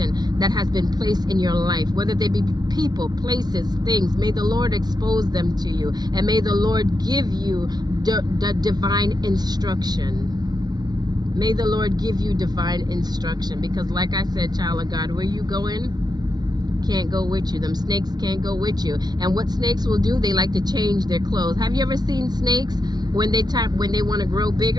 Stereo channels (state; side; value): late; left; 0.19 ms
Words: that has been placed in your life, whether they be people, places, things. May the Lord expose them to you. And may the Lord give you the divine instruction. May the Lord give you divine instruction. Because like I said, child of God, where you going? Can't go with you. Them snakes can't go with you. And what snakes will do, they like to change their clothes. Have you ever seen snakes when they want to grow